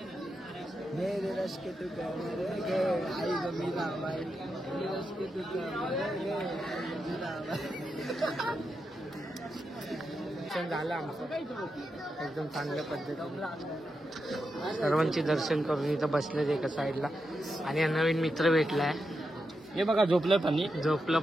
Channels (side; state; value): both; normal; correlation 0.86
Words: मेरे रश के तू आई गमीला बाई. रश के तू झालं आमचं एकदम चांगल्या पद्धतीने. सर्वांचे दर्शन करून इथं बसलेत एका साईडला. आणि नवीन मित्र भेटलाय. हे बघा झोपलं पण. झोपलं